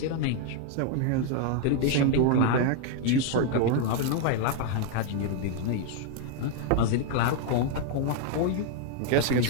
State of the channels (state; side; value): different; both; correlation 0.00